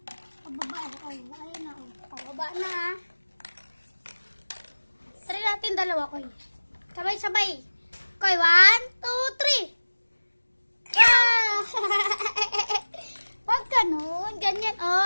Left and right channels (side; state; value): both; inverted; correlation -1.00